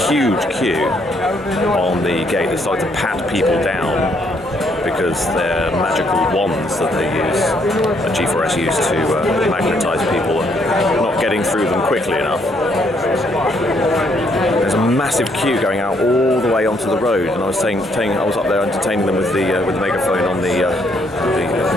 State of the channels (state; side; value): normal; both; correlation 0.71